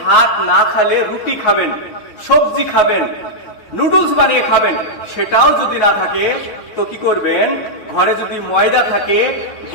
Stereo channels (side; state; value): right; late; 9.4 ms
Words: না খেলে রুটি খাবেন, সবজি খাবেন, নুডলস বানিয়ে খাবেন। সেটাও যদি না থাকে তো কি করবেন, ঘরে যদি ময়দা থাকে